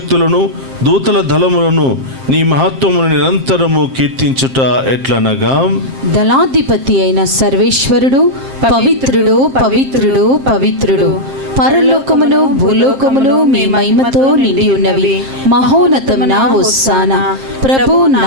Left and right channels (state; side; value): late; left; 7.5 ms